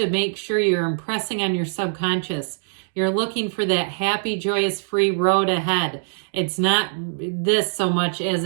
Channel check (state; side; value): silent; left; digital silence